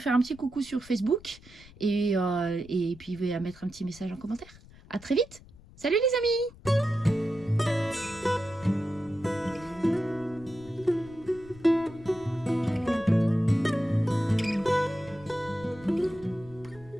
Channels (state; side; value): noise; left; rumble, 22 dB below the sound